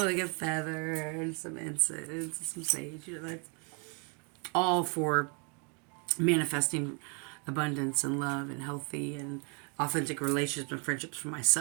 a feather and some incense and some sage. You know, that's all for manifesting abundance and love and healthy and authentic relationships and friendships for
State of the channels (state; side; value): quieter; left; 35.9 dB